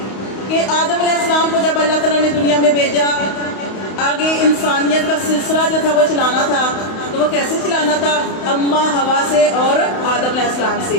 کہ آدم علیہ السلام کو جب اللہ تعالیٰ نے دنیا میں بھیجا آگے انسانیت کا سلسلہ جو تھا وہ چلانا تھا. تو وہ کیسے چلانا تھا؟ اماں ہوا سے اور آدم علیہ السلام سے.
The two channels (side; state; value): right; late; 32 ms